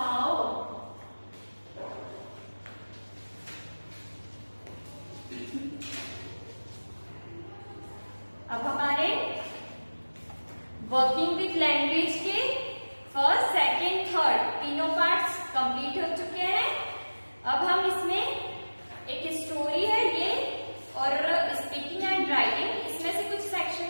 अब हमारे वर्किंग विथ लैंग्वेज के फर्स्ट, सेकेंड, थर्ड तीनों पार्ट्स कंप्लीट हो चुके हैं। अब हम इसमें एक स्टोरी है ये और स्पीकिंग एंड राइटिंग, इसमें से कुछ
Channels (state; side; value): inverted; both; correlation -1.00